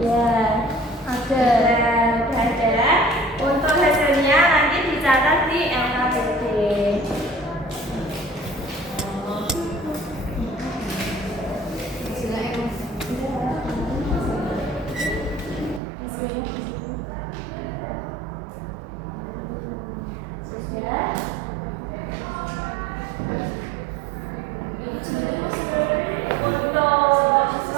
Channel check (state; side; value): drops out; left; at 15.8 s